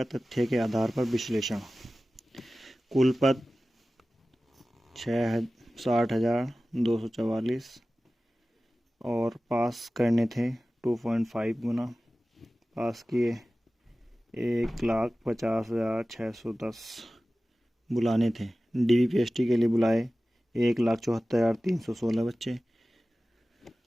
तथ्य के आधार पर विश्लेषण। कुल पद 60,244 और पास करने थे 2.5 गुना। पास किए 1,50,610। बुलाने थे DVPST के लिए बुलाए 1,74,316 बच्चे।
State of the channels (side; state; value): both; normal; correlation 0.96